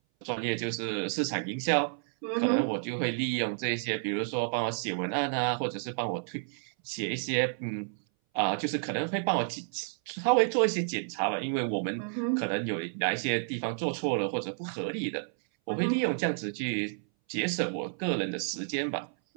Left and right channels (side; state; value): left; silent; 57 dB below the other